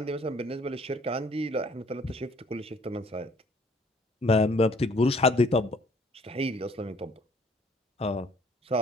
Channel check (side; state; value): both; normal; correlation 0.59